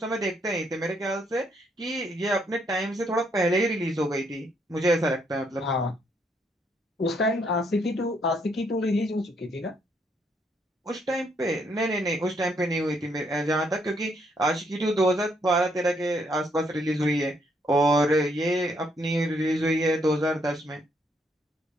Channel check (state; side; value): normal; both; correlation 0.72